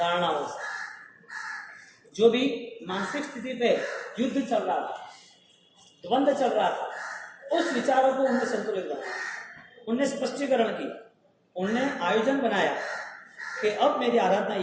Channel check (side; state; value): both; identical; correlation 1.00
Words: से। जो भी मानसिक स्थिति पे युद्ध चल रहा था, द्वंद्व चल रहा था, उस विचारों को उन्होंने संतुलित बनाया, उनने स्पष्टीकरण की, उनने आयोजन बनाया कि अब मेरी आराधना